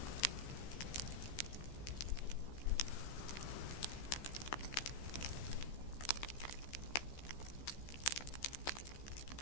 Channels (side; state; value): right; late; 15 ms